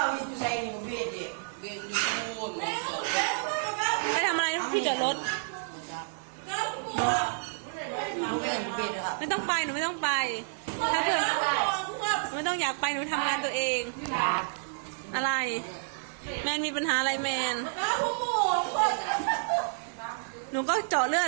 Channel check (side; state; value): left; silent; digital silence